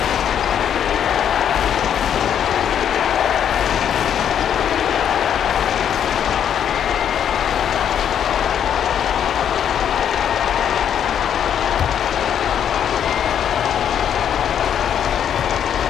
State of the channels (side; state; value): right; quieter; 9.1 dB